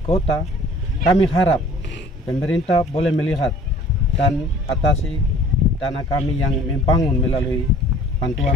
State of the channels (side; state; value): both; normal; correlation 0.51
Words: kami harap pemerintah boleh melihat dan atasi dana kami yang membangun melalui